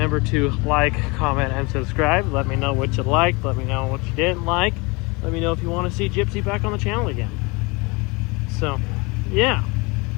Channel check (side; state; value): right; quieter; 27.0 dB